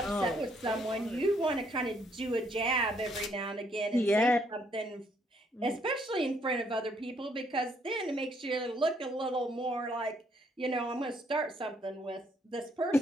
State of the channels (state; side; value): normal; both; correlation 0.69